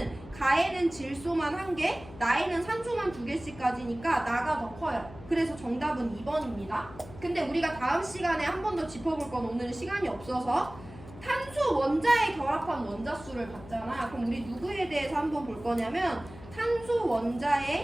가에는 질소만 1개, 나에는 산소만 2개씩까지니까 나가 더 커요. 그래서 정답은 2번입니다. 근데 우리가 다음 시간에 한 번 더 짚어볼 건 오늘은 시간이 없어서 탄소 원자에 결합한 원자 수를 봤잖아. 그럼 우리 누구에 대해서 한번 볼 거냐면 탄소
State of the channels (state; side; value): noise; left; hum, 17 dB below the sound